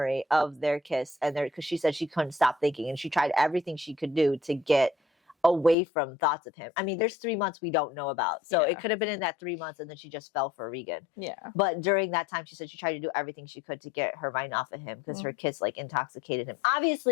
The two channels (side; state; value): right; drops out; at 5.8 s